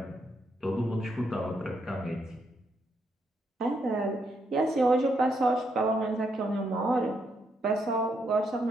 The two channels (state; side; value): normal; both; correlation 0.78